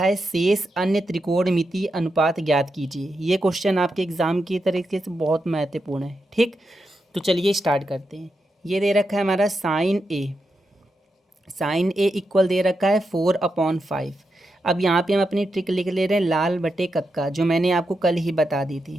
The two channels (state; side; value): normal; both; correlation 0.86